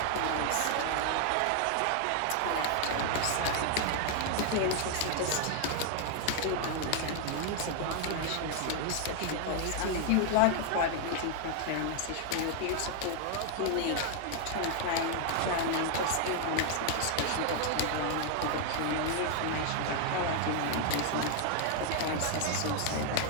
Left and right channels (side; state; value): both; different; correlation 0.00